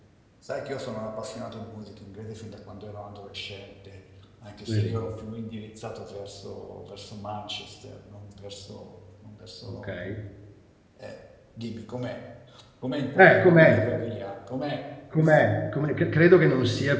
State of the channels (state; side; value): identical; both; correlation 1.00